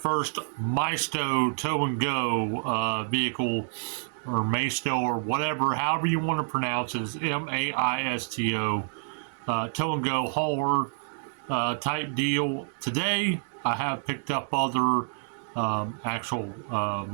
Maisto tow and go vehicle, or Maisto, or whatever, however you want to pronounce it. It's Maisto tow and go hauler type deal. Today, I have picked up other actual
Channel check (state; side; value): silent; left; digital silence